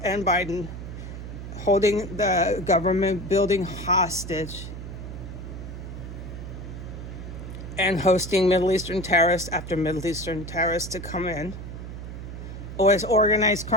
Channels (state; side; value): noise; right; hum, 9 dB below the sound